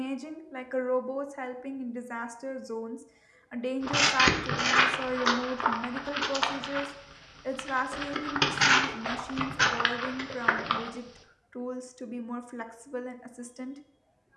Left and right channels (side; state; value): both; identical; correlation 1.00